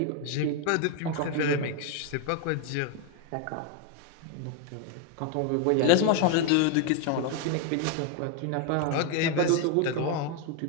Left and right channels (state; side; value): different; both; correlation 0.01